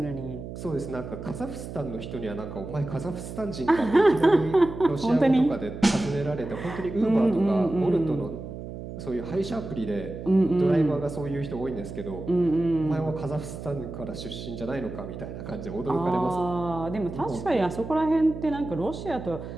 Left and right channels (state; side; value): noise; right; hum, 10 dB below the sound